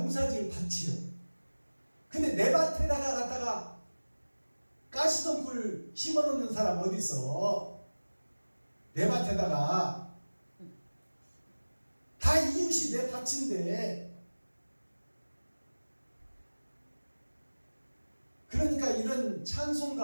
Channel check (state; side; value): inverted; both; correlation -1.00